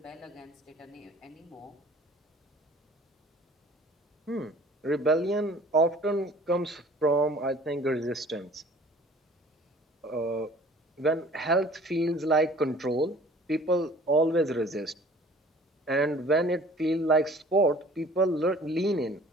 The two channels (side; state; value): both; normal; correlation 0.50